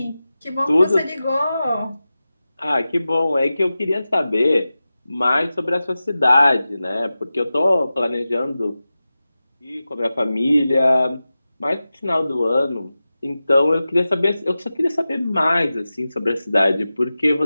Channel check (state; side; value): inverted; both; correlation -0.95